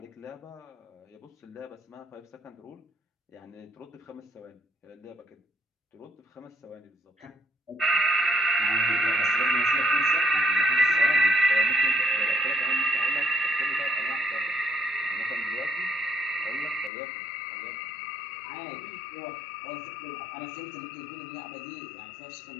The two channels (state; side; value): drops out; right; at 16.9 s